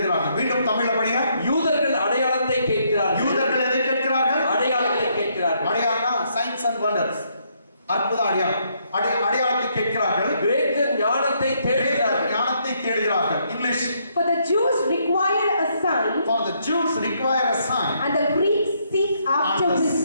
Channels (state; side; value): inverted; both; correlation -0.72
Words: மீண்டும் தமிழ்ல படிங்க. யூதர்கள் அடையாளத்தை கேட்கிறார்கள். யூதர்கள் எதை கேட்கிறார்கள்? அடையாளத்தை கேட்கிறார்கள். அடையாளம்னா சைன்ஸ் அண்ட் வண்டர்ஸ், அற்புத அடையாளம். அடையாளத்தை கேட்கிறார்கள். கிரேக்கர் ஞானத்தை தேடுகிறார்கள். ஞானத்தை தேடுகிறார்கள். English. For the Jews require a sign. For the Jews require a sign. And the Greeks seek after